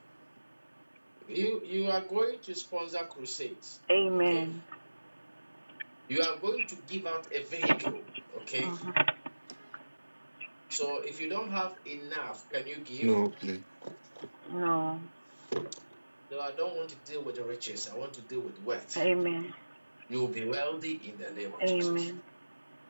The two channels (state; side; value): inverted; both; correlation -1.00